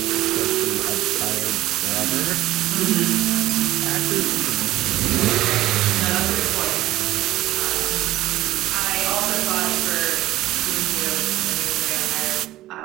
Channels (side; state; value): left; quieter; 15.7 dB